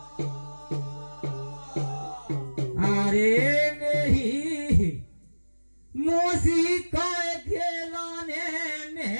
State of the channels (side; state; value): both; inverted; correlation -1.00